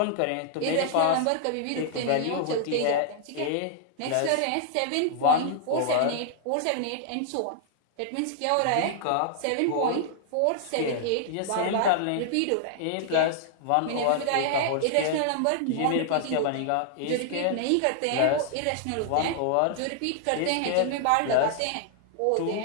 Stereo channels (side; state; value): both; different; correlation -0.01